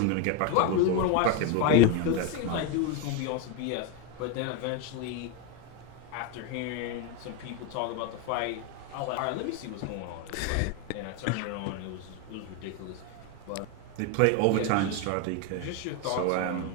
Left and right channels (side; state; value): both; different; correlation 0.02